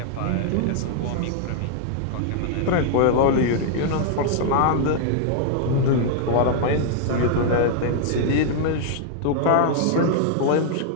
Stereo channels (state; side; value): different; both; correlation -0.01